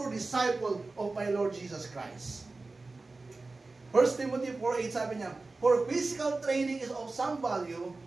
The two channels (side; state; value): left; quieter; 3.5 dB